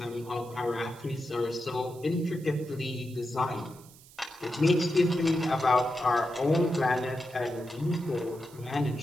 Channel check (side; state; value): right; noise; hiss, 23 dB below the sound